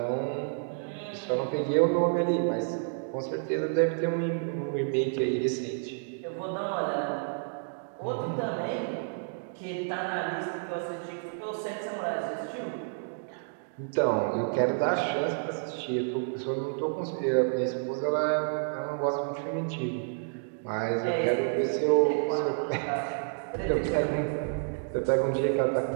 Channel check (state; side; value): silent; left; digital silence